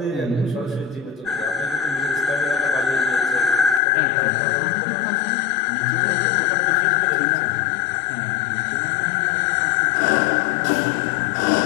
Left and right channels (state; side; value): drops out; right; at 3.8 s